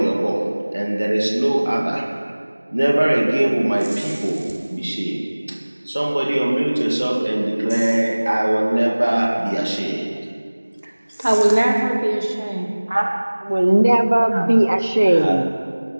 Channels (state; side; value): inverted; both; correlation -1.00